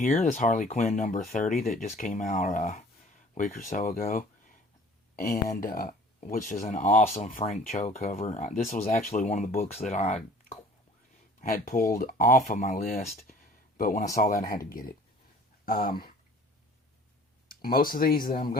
this Harley Quinn number 30 that just came out a week or so ago. And which is an awesome Frank Cho cover. This was actually one of the books that I had pulled off of my list, but when I saw that, I had to get it. Most of these that I'm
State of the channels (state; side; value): normal; both; correlation 0.49